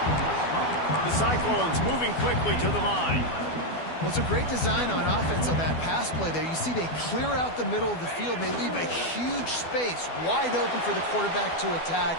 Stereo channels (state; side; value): late; right; 12 ms